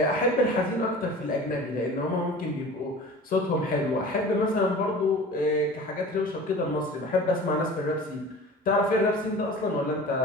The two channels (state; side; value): normal; both; correlation 0.39